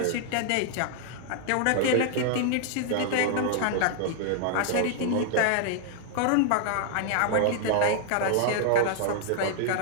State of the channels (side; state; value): both; different; correlation 0.00